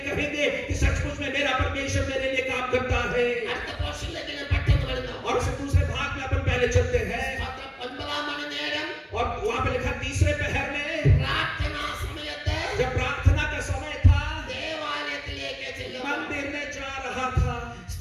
कहेंगे कि सचमुच में मेरा परमेश्वर मेरे लिए काम करता है. അടുത്ത പോർഷനിലേക്ക് ഞാൻ പെട്ടെന്ന് വരുന്നു. और उससे दूसरे भाग में अपन पहले चलते हैं. 9 മണി നേരം और वहां पे लिखा तीसरे पहर में, പ്രാർത്ഥനാ സമയത്ത് जब प्रार्थना का समय था, ദേവാലയത്തിലേക്ക് ചെല്ലുന്നു. मंदिर में जा रहा था.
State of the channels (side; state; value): both; identical; correlation 1.00